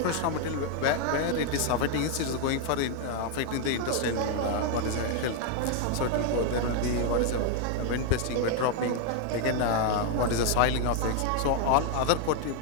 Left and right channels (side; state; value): both; different; correlation 0.00